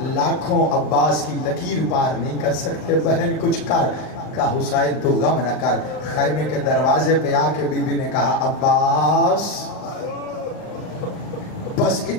لاکھوں عباس کی لکیر پار نہیں کر سکتے. بہن کچھ کر. کہا حسین تو غم نہ کر. خیمے کے دروازے پہ آ کے بی بی نے کہا عباس. بس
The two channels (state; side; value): late; right; 39 ms